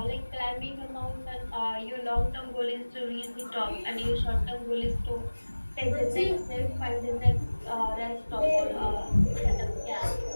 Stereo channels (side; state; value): both; inverted; correlation -1.00